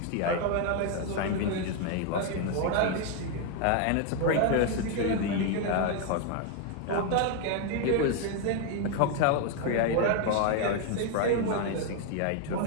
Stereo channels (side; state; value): both; different; correlation 0.01